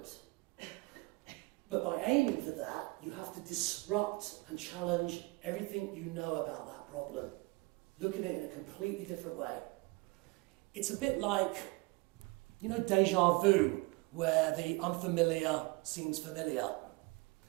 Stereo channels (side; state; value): left; quieter; 24.9 dB